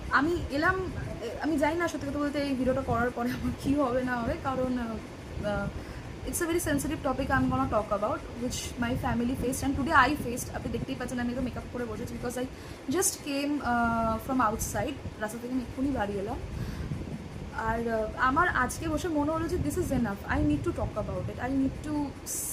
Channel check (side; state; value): both; identical; correlation 1.00